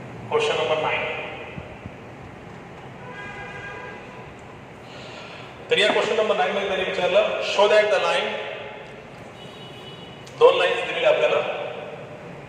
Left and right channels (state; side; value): identical; both; correlation 1.00